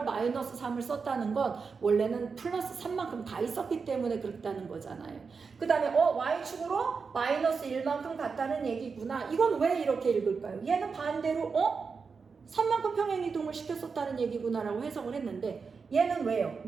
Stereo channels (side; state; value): left; quieter; 5.2 dB